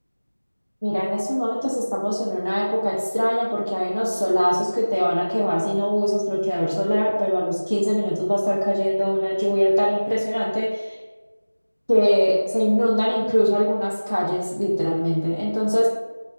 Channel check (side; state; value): both; inverted; correlation -1.00